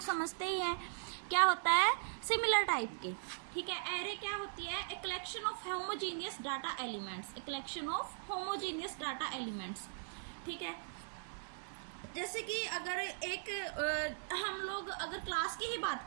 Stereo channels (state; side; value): silent; left; digital silence